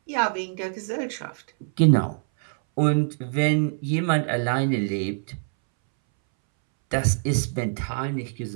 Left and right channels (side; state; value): left; silent; 62 dB below the other